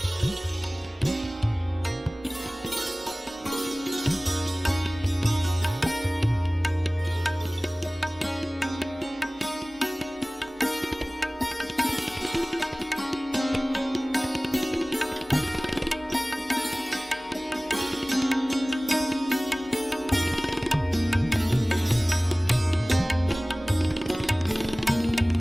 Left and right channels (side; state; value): both; normal; correlation 0.98